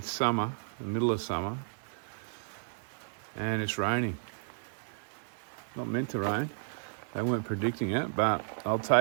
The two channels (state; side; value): silent; left; digital silence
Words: summer, the middle of summer, and it's raining. Not meant to rain. They weren't predicting it, but I'll